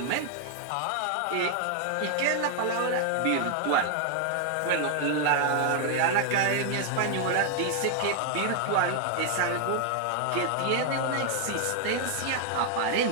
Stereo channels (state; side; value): different; both; correlation 0.00